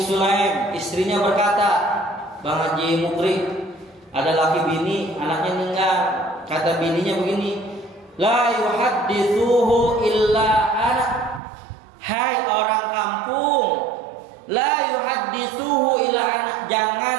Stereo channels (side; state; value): left; drops out; at 11.4 s